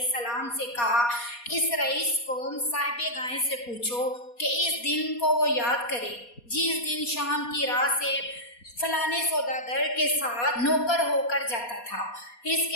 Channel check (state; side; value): late; right; 4.2 ms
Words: سے کہا، اس رئیس قوم صاحب گائے سے پوچھو کہ اس دن کو وہ یاد کرے جس دن شام کی راہ سے فلانے سوداگر کے ساتھ نوکر ہو کر جاتا تھا، اس